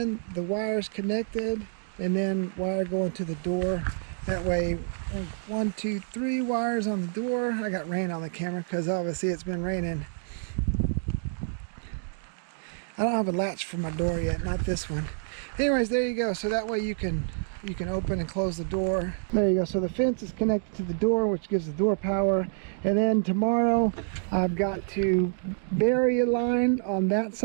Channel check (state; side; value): silent; left; digital silence